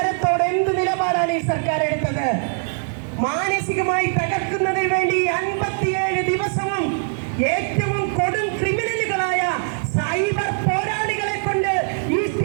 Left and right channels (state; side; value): silent; left; 64 dB below the other